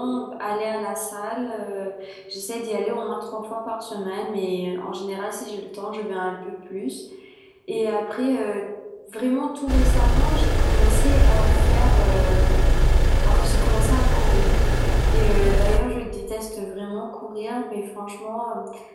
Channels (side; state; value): both; identical; correlation 1.00